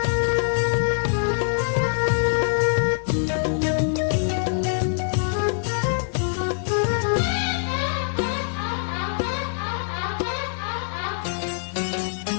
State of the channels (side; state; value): right; silent; digital silence